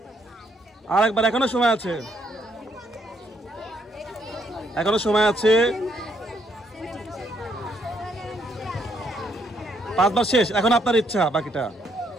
এখনো সময় আছে, এখনো সময় আছে। 5 বার শেষ। এখন আপনার ইচ্ছা বাকিটা।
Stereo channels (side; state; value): both; normal; correlation 0.72